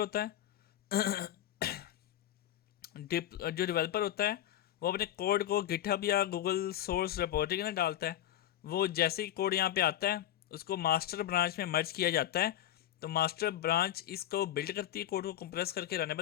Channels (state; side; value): quieter; right; 12.2 dB